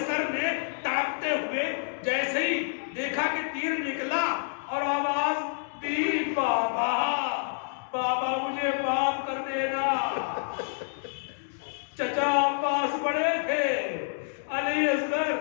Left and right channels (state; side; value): silent; right; digital silence